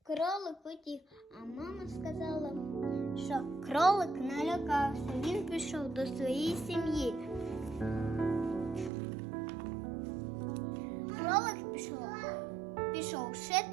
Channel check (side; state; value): left; drops out; at 8.9 s